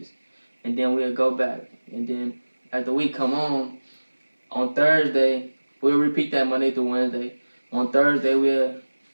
And then we'll go back, and then as the week come on Thursday, we'll repeat that Monday through Wednesday. On Thursday, we'll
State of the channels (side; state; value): both; inverted; correlation -1.00